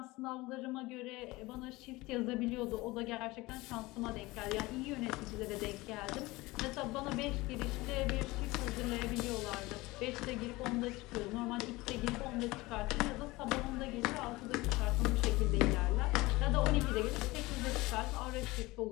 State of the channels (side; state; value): right; quieter; 21.0 dB